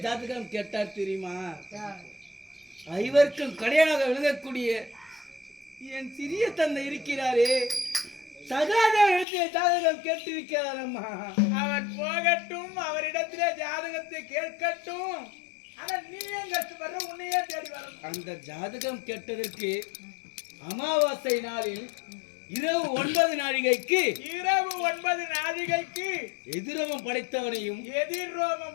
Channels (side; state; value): right; drops out; at 9.2 s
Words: ஜாதகம் கேட்டார் தெரியுமா? ஐவருக்கும் கடையாக விளங்கக்கூடிய என் சிறிய தந்தை இருக்கிறாரே, சகாதேவனிடத்திலே ஜாதகம் கேட்டிருக்கிறார் அம்மா. அவர் போகட்டும், அவரிடத்திலே ஜாதகத்தை கேட்கட்டும். ஆனா நீ ஏன் கஷ்டப்படுற, உன்னையே தேடி வரணும். அந்த ஜாதகம் கேட்டதற்கு அமாவாசை நாளில் இரவு 9 நாழிகைக்கு எதிரோமம் படைத்தவனையும்